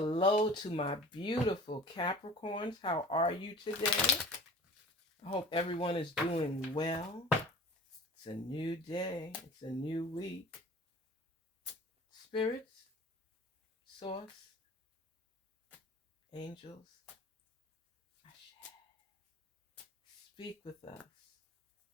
to my beautiful Capricorns. How are you today? I hope everyone is doing well. It's a new day. It's a new week. Spirits, source, angels, speak with us.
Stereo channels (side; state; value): both; normal; correlation 0.42